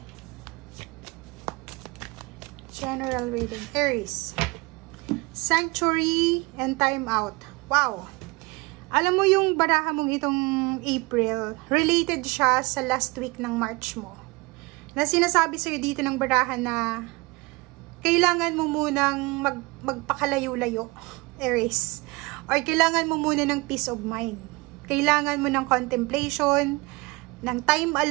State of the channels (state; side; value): quieter; left; 25.2 dB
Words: General reading, Aries. Sanctuary and time out. Wow! Alam mo yung baraha mong itong April, related siya sa last week ng March mo. Na sinasabi sa'yo dito ng baraha na kailangan mo munang magpakalayo-layo, Aries. Or kailangan mo muna ng peace of mind. Kailangan mo ng contemplation, ng time